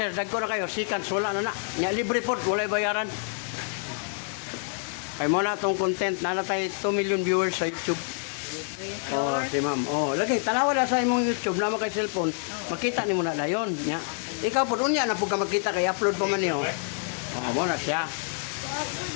dagko na kayo, seconds, wala na na. Nya libre po, walay bayaran. Kay mo na tong content, na tayo 2 million viewers sa YouTube. Oh, si ma'am. Oh, lagi tanawa na sa imong YouTube na kay cellphone. Makita nimo na dayon nya. Ikaw pud unya na pud ka makita kay upload pa man niyo. Oh, mo na siya.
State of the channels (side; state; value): right; silent; 60 dB below the other